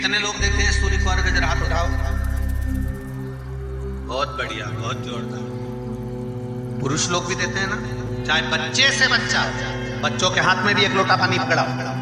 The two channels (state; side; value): identical; both; correlation 1.00